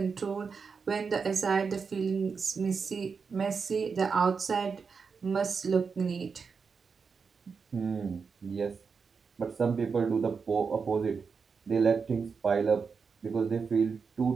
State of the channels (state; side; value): quieter; left; 5.4 dB